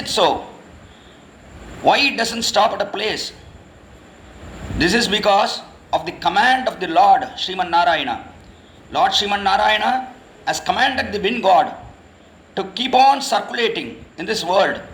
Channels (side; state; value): both; identical; correlation 1.00